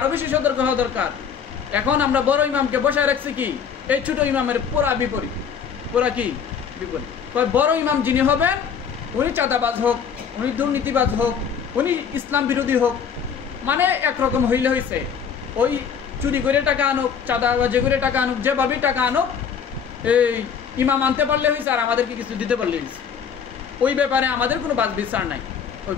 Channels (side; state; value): right; quieter; 7.2 dB